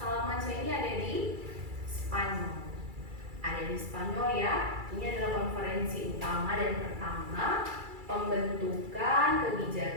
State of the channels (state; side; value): late; left; 2.3 ms